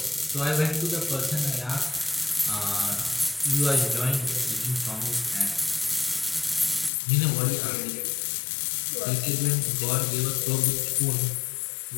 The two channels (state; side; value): drops out; right; at 6.9 s